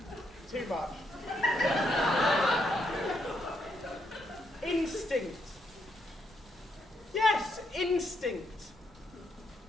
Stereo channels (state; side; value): normal; both; correlation 0.77